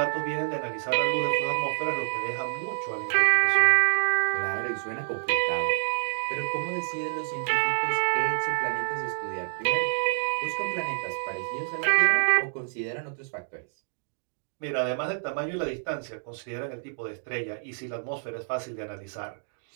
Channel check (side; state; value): left; silent; digital silence